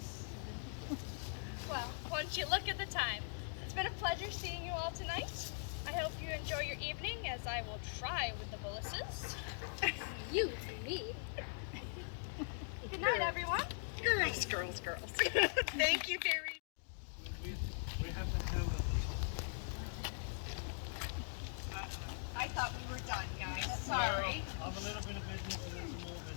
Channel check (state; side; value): silent; right; digital silence